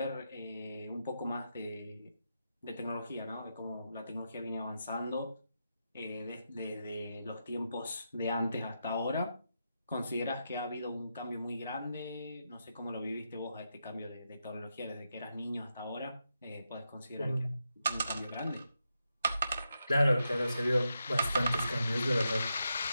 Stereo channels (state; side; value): inverted; both; correlation -0.85